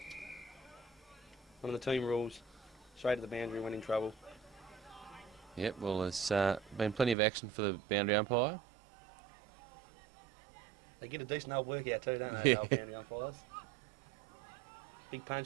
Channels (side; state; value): left; drops out; at 7.2 s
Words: One of the team rules. Straight to the boundary when in trouble. Yep, well, there's been plenty of action for the boundary umpire. They get a decent old workout too, don't they, the old boundary umpires? Big